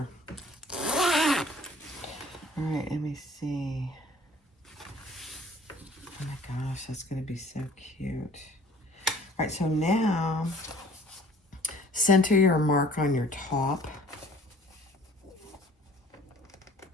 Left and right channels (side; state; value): both; normal; correlation 0.52